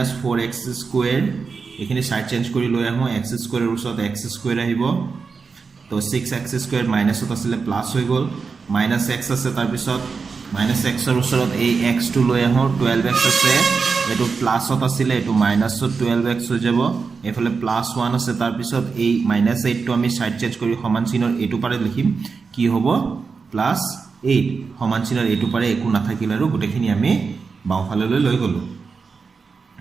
এখিনি সাইড চেঞ্জ কৰি লৈ আহো x² ৰ ওচৰত x² আহিব তো 6x² মাইনাসত আছিল প্লাস হৈ গল -x আছে তাৰ পিছত -x ৰ ওচৰত এই x টো লৈ আহো 12x আছে এটো প্লাসত আছিল এটো মাইনাসত 12x হৈ যাব এফালে +1 আছে তাৰ পিছত এই -8 টো আমি সাইড চেঞ্জ কৰি সমান চিনৰ এটো পাৰে লিখিম কি হ'ব +8 সমান চিনৰ এটো পাৰে একো নাথাকিল আৰু গুটেখিনি আমি বাওফাললৈ লৈ গলো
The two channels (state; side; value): quieter; left; 5.0 dB